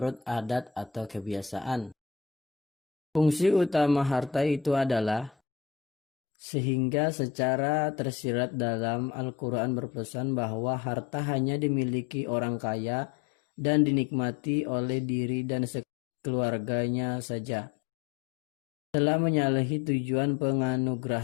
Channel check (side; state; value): right; drops out; at 5.3 s